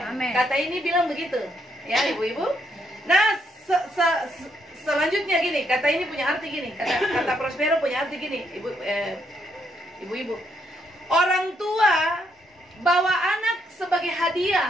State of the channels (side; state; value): both; normal; correlation 0.75